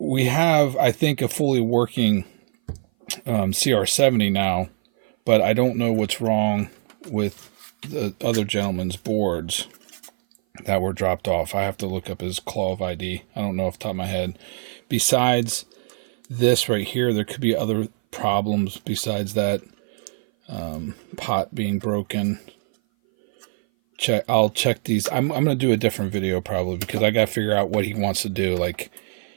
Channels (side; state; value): left; silent; 58 dB below the other